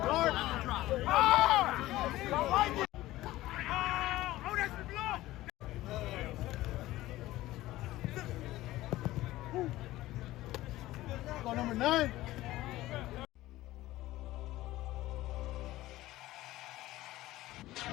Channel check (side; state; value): right; quieter; 16.6 dB